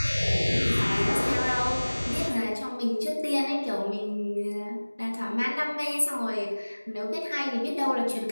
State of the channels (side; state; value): both; inverted; correlation -1.00